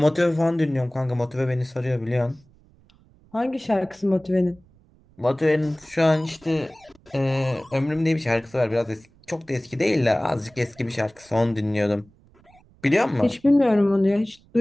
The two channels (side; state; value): right; noise; rumble, 30 dB below the sound